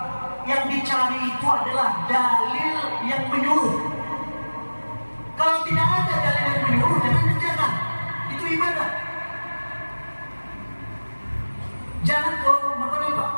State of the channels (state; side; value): inverted; both; correlation -1.00